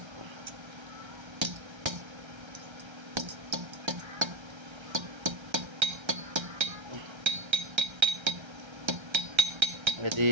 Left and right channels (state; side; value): late; left; 1.3 ms